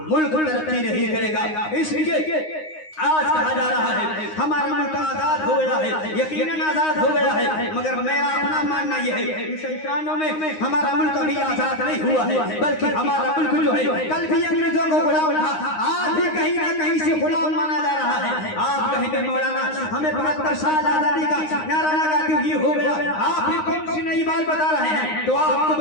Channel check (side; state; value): right; late; 9.7 ms